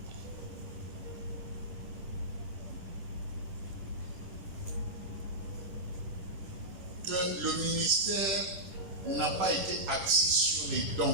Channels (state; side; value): late; left; 10 ms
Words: que le ministère n'a pas été axé sur les